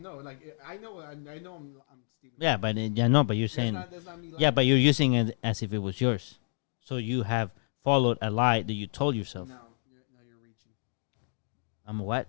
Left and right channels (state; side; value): silent; right; 58 dB below the other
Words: Like I know I'm stealing. Yeah, but you're saying that's not me lying. Yeah, but you're using it as if it was yours. So you have followed a lie that you told yourself. No, you're reaching. I'm what?